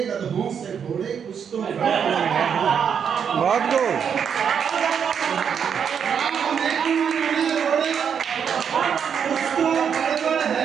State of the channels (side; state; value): left; quieter; 7.4 dB